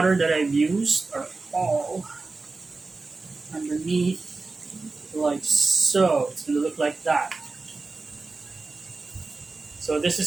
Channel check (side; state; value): left; quieter; 3.8 dB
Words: that I've used are all underneath, like so. It's going to look like that. So this